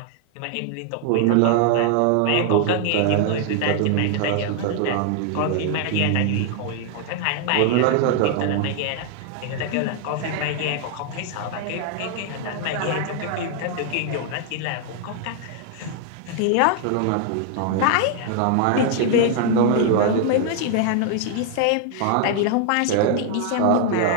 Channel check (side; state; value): both; different; correlation 0.00